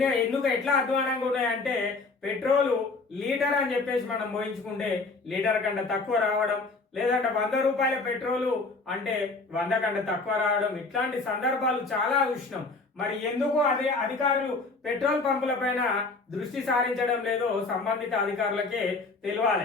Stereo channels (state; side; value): quieter; right; 3.8 dB